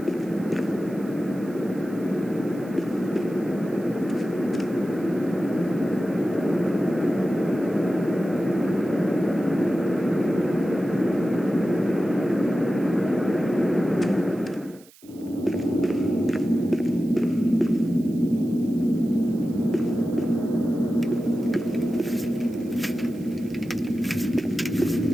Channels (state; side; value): noise; right; hiss, 26 dB below the sound